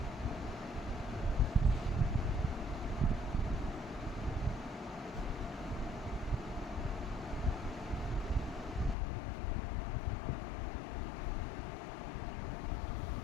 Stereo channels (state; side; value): drops out; right; at 9.0 s